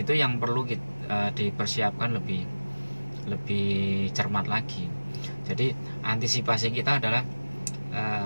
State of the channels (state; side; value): inverted; both; correlation -1.00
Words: yang perlu dipersiapkan lebih cermat lagi. Jadi antisipasi kita adalah